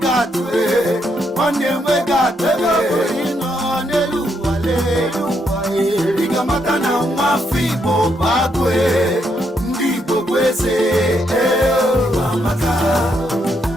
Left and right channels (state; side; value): normal; both; correlation 0.77